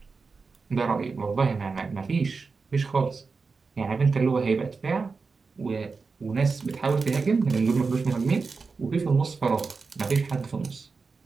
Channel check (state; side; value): quieter; left; 4.6 dB